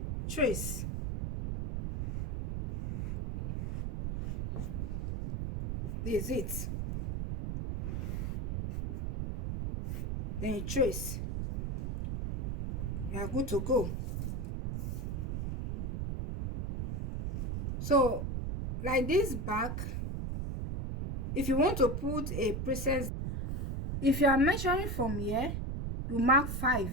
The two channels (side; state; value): right; noise; rumble, 2 dB below the sound